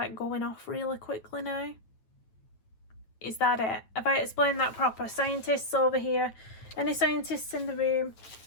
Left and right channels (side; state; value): right; late; 9.1 ms